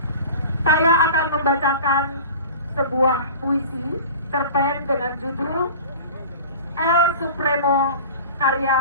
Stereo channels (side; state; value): both; inverted; correlation -0.38